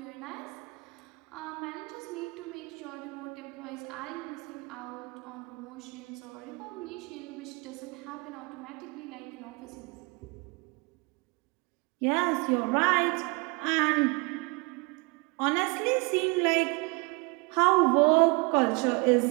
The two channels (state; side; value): quieter; left; 28.8 dB